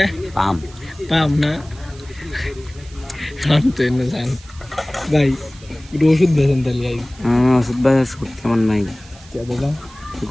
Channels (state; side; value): noise; right; hiss, 23 dB below the sound